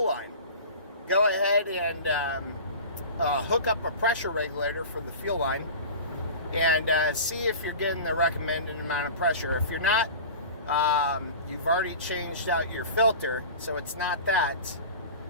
line. Go ahead and hook up a pressure regulator for the fuel line and see if you're getting the recommended amount of pressure. If you're not, you've already changed out your filter, so it's not that.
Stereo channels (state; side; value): inverted; both; correlation -0.35